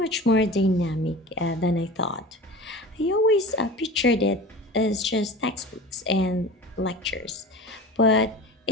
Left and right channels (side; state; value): both; normal; correlation 0.35